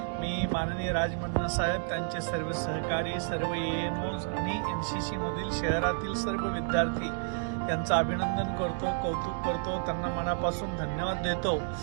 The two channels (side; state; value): left; silent; digital silence